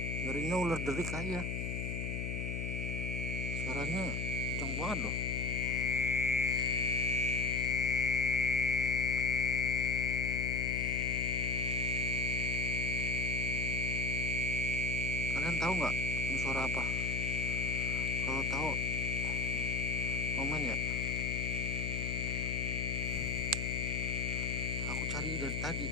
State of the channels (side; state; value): left; noise; hum, 3 dB below the sound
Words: Ngerinya ular derik aja. Suaranya kencang banget loh. Kalian tahu nggak ini suara apa? Kalau tahu komen ya. Aku cari dari tadi.